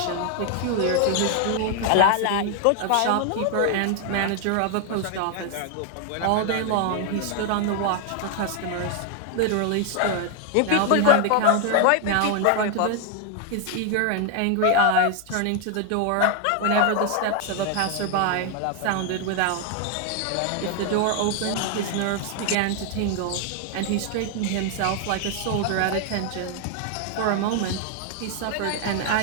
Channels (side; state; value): both; different; correlation 0.00